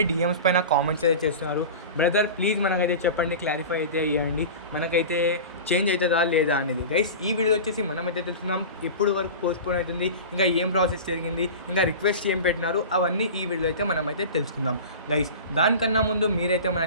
డిఎమ్స్ పైన కామెంట్స్ అయితే చేస్తున్నారు. బ్రదర్ ప్లీజ్ మనకైతే చెప్పండి, క్లారిఫై అయితే ఇవ్వండి, మనకైతే చేంజ్ అవుతుందా లేదా అనేది. గైస్, ఈ వీడియో వచ్చేసి మనమైతే తెలుసుకుందాం ఇప్పుడు వరకు పోస్ట్ పోన్ అవుతుంది, ఇంకా ఏం ప్రాసెస్ జరిగింది, ఇంకా రిక్వెస్ట్ ఏం పెట్టినారు, అవన్నీ ఈ వీడియో అయితే మనమైతే తెలుసుకుందాం. గైస్, దానికన్నా ముందు మీరైతే మన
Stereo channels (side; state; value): both; inverted; correlation -0.32